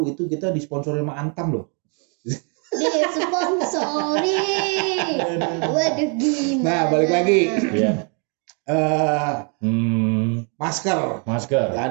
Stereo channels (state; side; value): quieter; left; 37.2 dB